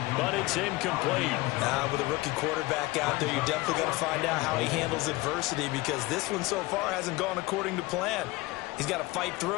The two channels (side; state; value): right; quieter; 20.8 dB